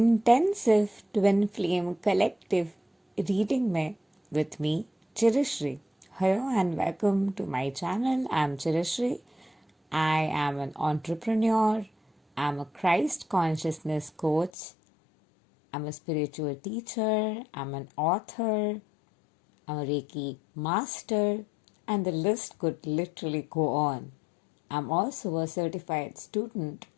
twin flame collective reading में with me Chirashree. Hello and welcome to my channel. I am Chirashree. I am an entrepreneur. I'm a Christ consciousness coach. I'm a spiritual teacher. I'm an author. I'm a Reiki master. And the list could literally go on. I'm also a certified student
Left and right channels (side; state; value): right; drops out; at 14.5 s